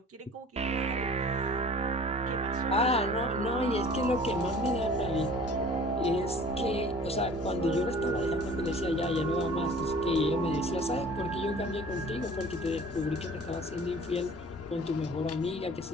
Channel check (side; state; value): both; normal; correlation 0.46